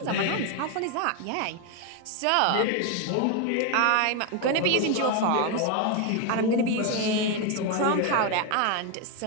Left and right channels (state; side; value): different; both; correlation 0.01